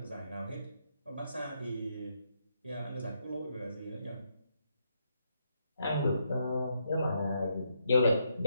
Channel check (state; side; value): inverted; both; correlation -0.78